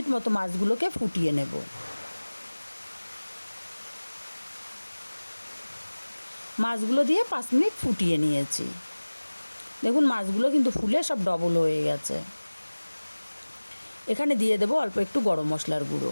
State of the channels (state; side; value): inverted; both; correlation -1.00